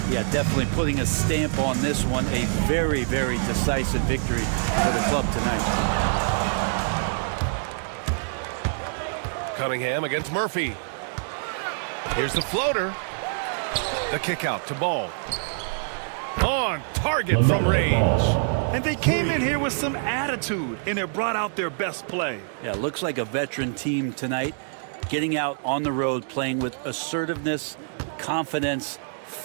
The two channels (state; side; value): silent; left; digital silence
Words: Yeah, definitely putting a stamp on this one. A very, very decisive victory for the club tonight. Cunningham against Murphy. Here's the floater. The kick out to Ball. On target from range. And they came in here with some attitude, and it brought out their best play. Yeah, looks like a veteran team tonight, getting out on the road, playing with assertiveness, confidence,